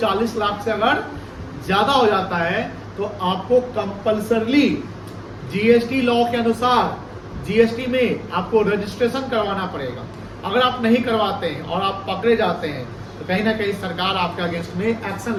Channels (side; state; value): both; identical; correlation 1.00